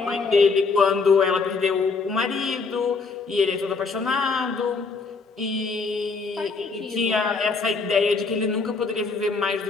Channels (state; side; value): quieter; right; 4.4 dB